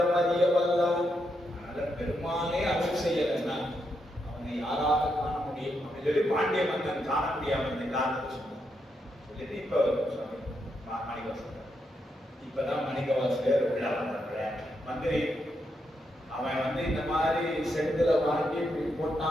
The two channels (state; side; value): normal; both; correlation 0.82